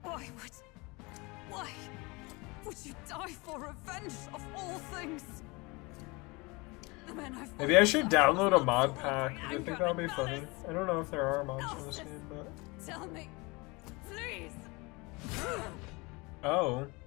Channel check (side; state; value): right; quieter; 25.9 dB